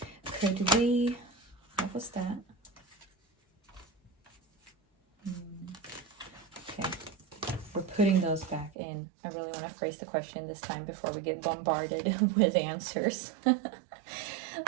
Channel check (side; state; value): left; drops out; at 8.7 s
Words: Could we, what was that? Okay, we're putting those back in. I really want to phrase the question this time before we get bombarded with answers.